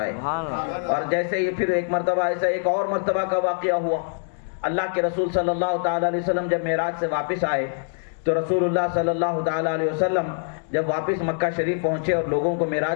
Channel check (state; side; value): silent; right; digital silence